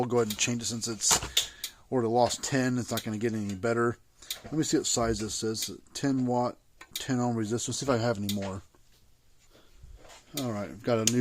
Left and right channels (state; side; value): identical; both; correlation 1.00